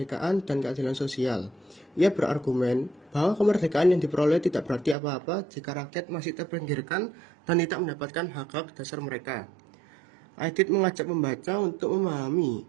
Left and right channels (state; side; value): drops out; left; at 5.0 s